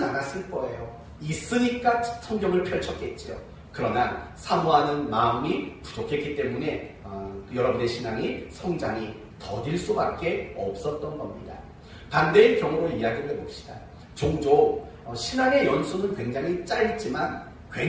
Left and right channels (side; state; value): both; identical; correlation 1.00